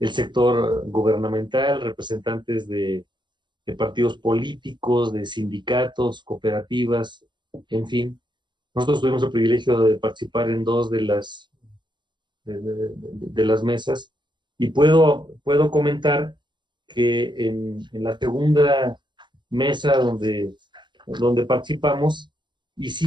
sector gubernamental, representantes de partidos políticos, de sindicatos, cooperativas, en fin. Nosotros tuvimos el privilegio de participar en 2 de las mesas, y puedo comentar que en la segunda mesa donde participamos,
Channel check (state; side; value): late; left; 0.22 ms